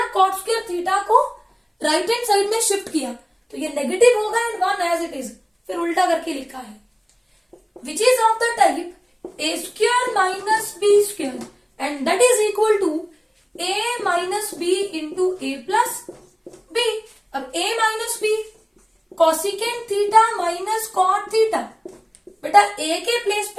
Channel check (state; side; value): identical; both; correlation 1.00